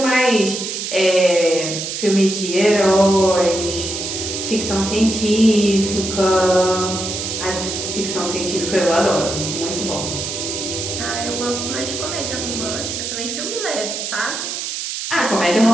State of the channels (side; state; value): right; noise; hiss, 5 dB below the sound